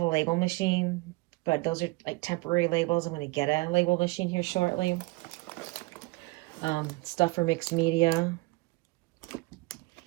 label machine, but those are like temporary labels. I'm going to get a label machine here shortly. Stuff for mixed media.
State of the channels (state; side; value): quieter; left; 23.9 dB